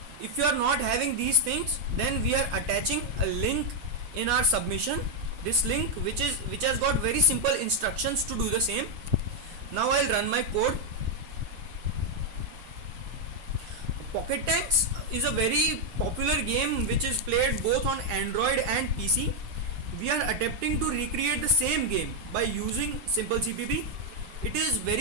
if you are not having these things, then we are attaching a link in our submission. This link which has got very simple instructions to do the same. Now I'll run my code. Pocket Tanks is a very popular game which is played both on Android and PC. We are attempting to recreate the same game by using Simple CPP. It is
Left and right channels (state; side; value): late; left; 7.9 ms